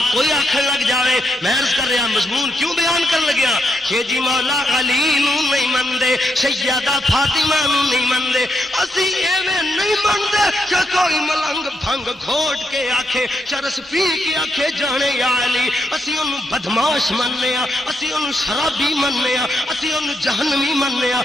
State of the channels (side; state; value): both; normal; correlation 0.80